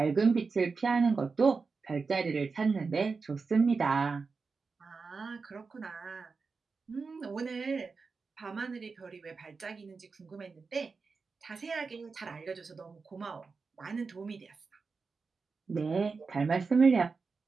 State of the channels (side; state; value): left; quieter; 4.6 dB